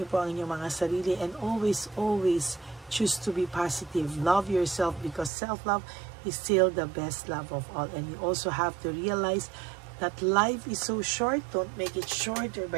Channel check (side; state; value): left; drops out; at 5.3 s